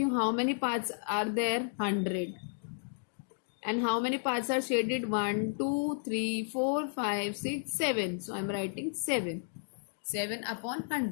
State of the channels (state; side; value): silent; right; digital silence